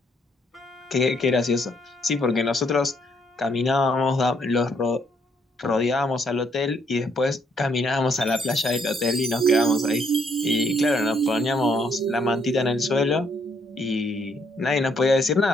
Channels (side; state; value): both; normal; correlation 0.71